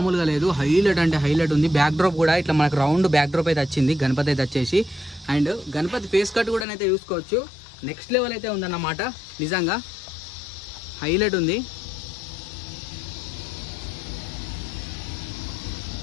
లేదు, హైలైట్ అంటే హైలైట్ ఉంది. బ్యాక్ డ్రాప్ కూడా ఇట్లా మనకు రౌండ్ బ్యాక్ డ్రాప్ అయితే వచ్చింది గణపతి అయితే వచ్చేసి. అండ్ గణపతి ఫేస్ కట్ కూడా అయితే చూసుకోవచ్చు, నెక్స్ట్ లెవెల్ అయితే ఉందన్నమాట నిజంగా. హైలైట్ ఉంది.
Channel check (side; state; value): right; drops out; at 6.7 s